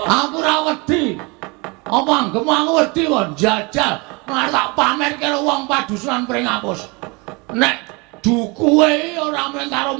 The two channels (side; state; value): left; quieter; 27.9 dB